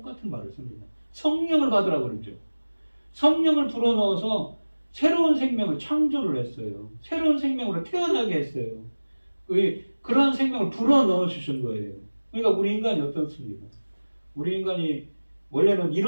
말을 씁니다. 성령을 받으라 그러죠. 성령을 불어넣어서 새로운 생명을 창조를 했어요. 새로운 생명으로 태어나게 했어요. 그러한 생명을 불어넣어 주신 거예요. 그러니까 우리 인간이 어떻습니까? 우리 인간이 원래는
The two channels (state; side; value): inverted; both; correlation -1.00